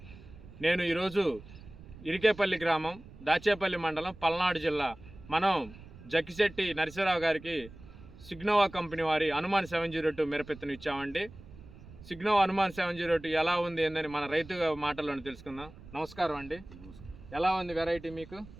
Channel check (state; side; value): noise; right; rumble, 18 dB below the sound